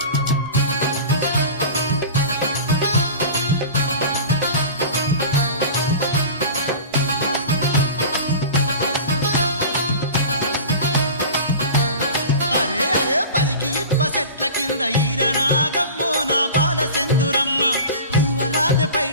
చెట్ల కింద ఈరనాగమ్మో నా బాల సెందురమ్మ పర్వరాజ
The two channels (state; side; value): inverted; both; correlation -0.35